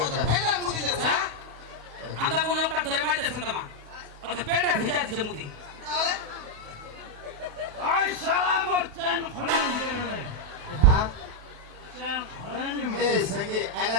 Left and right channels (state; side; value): late; left; 28 ms